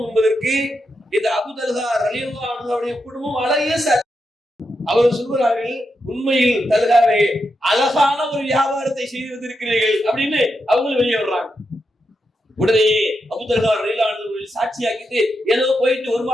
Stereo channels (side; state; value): both; normal; correlation 0.85